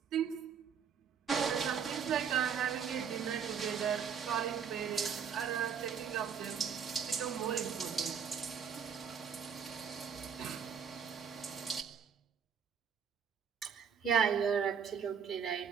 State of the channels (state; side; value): quieter; left; 7.2 dB